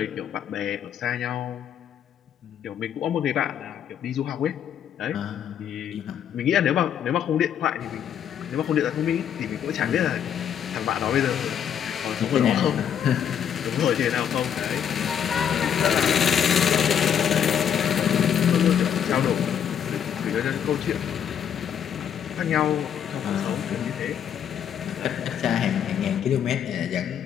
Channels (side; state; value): right; quieter; 8.8 dB